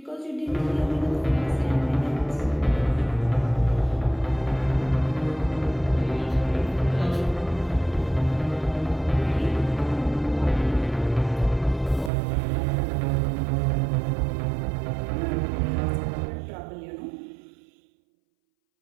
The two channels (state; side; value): drops out; left; at 12.1 s